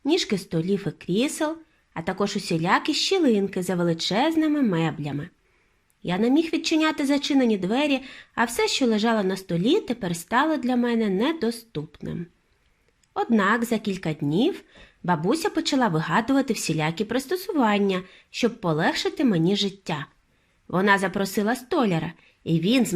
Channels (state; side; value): identical; both; correlation 1.00